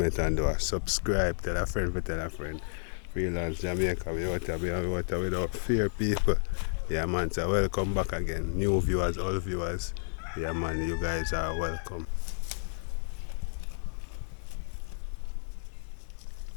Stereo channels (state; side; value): silent; right; digital silence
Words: and do a subscribe. Tell a friend, tell a friend. Freelance Jamaica, we out without fear, people. Yeah, man, so welcome back again. New viewers, all viewers. Yeah, man, you guys are welcome.